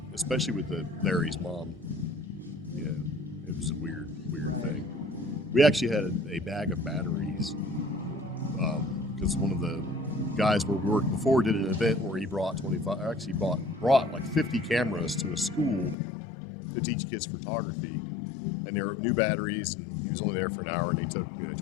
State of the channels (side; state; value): right; drops out; at 16.0 s